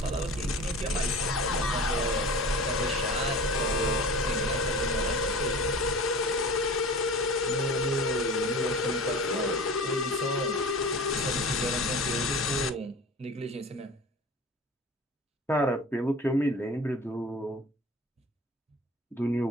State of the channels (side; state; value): both; normal; correlation 0.38